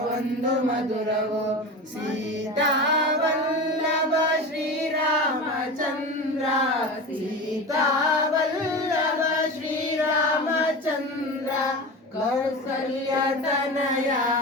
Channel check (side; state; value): both; normal; correlation 0.28